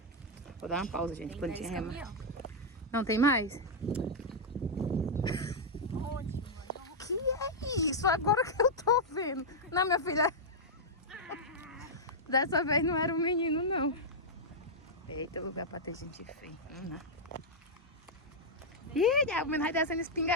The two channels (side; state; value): both; normal; correlation -0.05